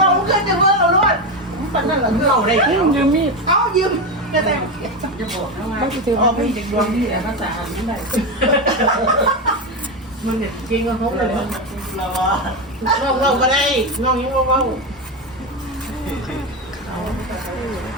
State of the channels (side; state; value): both; normal; correlation 0.14